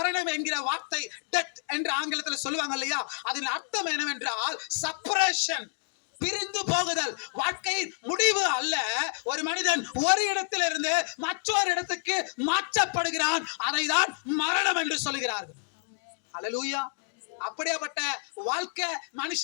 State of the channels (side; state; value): right; quieter; 36.5 dB